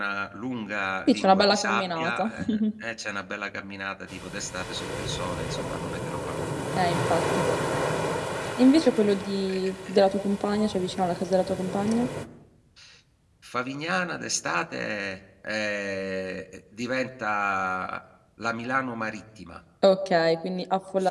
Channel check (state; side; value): identical; both; correlation 1.00